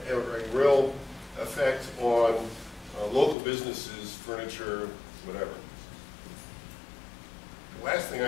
real effect on local businesses, furniture, whatever. The last thing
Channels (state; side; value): drops out; right; at 3.4 s